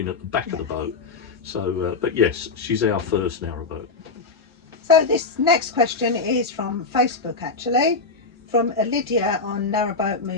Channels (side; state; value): right; quieter; 4.1 dB